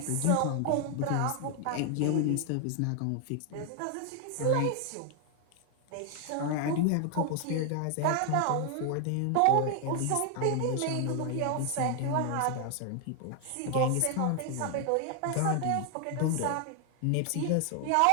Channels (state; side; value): different; both; correlation 0.00